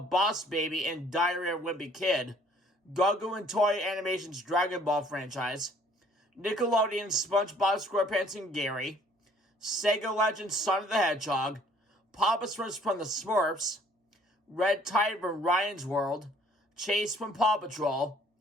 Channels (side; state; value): both; normal; correlation 0.58